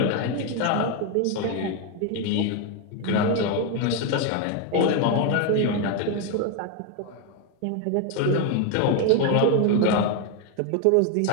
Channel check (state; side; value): different; both; correlation 0.02